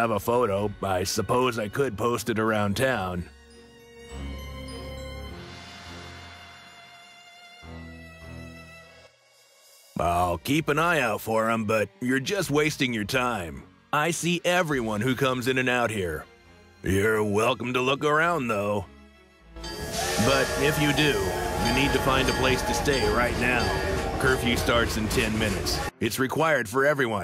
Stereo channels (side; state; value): both; identical; correlation 1.00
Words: a photo, I suppose I could post it around town. I'll keep an eye out for him, but you're just wasting your time. I see everyone who comes in and out here. You're welcome to look around, though. But if you do, you need to find a place to stay right now. Curfew starts in 10 minutes. It's required for